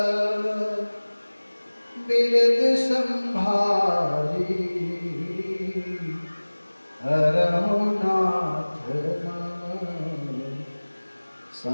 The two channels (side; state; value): both; inverted; correlation -1.00